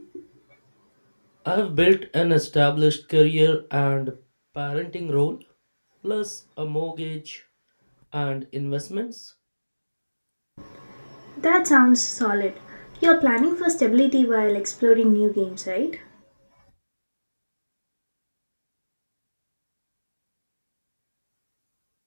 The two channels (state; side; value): inverted; both; correlation -1.00